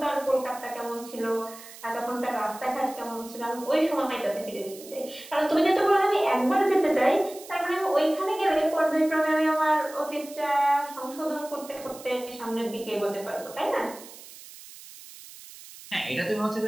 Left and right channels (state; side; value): noise; right; hiss, 17 dB below the sound